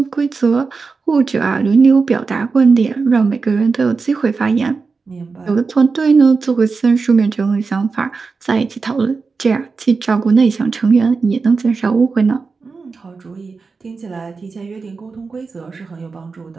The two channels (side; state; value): left; quieter; 4.6 dB